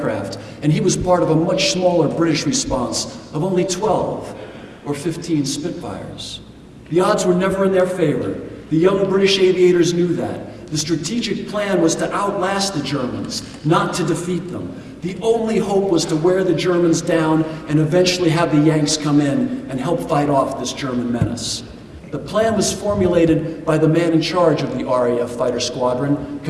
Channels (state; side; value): identical; both; correlation 1.00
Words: and he was part of a much smaller British response of only 12 or 15 Spitfires. The odds were never in their favor. The young British aviators knew that. The strategic plan was to outlast the Germans, not to defeat them. The only hope was to wear the Germans down and eventually have the Yanks come in and help fight off this German menace. The plan was formulated by the man in charge of the RAF fighter squadron,